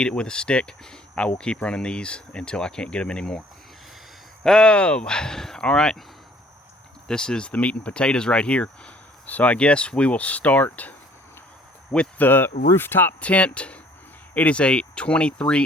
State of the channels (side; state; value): both; normal; correlation 0.56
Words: it with a stick. I will keep running these until I can't get them anymore. Oh, all right. This is the meat and potatoes right here. So I guess we will start with the rooftop tent. It is a